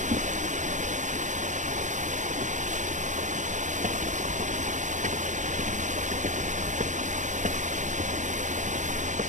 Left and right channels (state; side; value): late; left; 0.35 ms